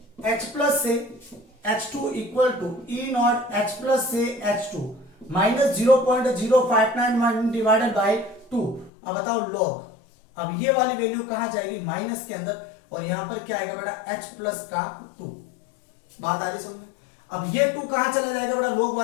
H प्लस से H2 equal to E naught H plus से H2 माइनस 0.0591 डिवाइडेड बाय 2। अब बताओ log, अब ये वाली वैल्यू कहां जाएगी, माइनस के अंदर, और यहां पर क्या आएगा बेटा H प्लस का 2। बात आ रही समझ में। अब ये 2 कहां चला जाएगा बेटा, log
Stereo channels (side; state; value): right; drops out; at 8.9 s